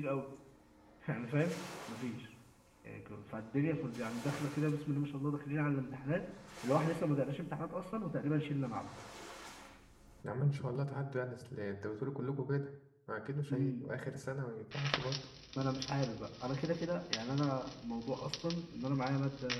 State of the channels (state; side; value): identical; both; correlation 1.00